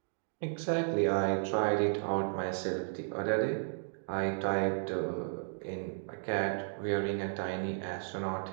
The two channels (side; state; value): left; silent; digital silence